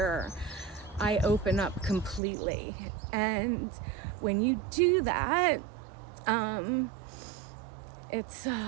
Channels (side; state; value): left; drops out; at 2.2 s